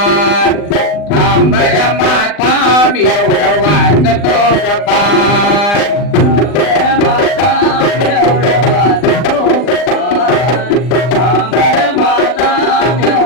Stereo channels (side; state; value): right; late; 39 ms